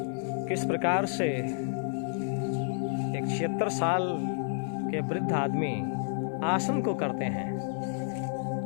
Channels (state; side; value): silent; right; digital silence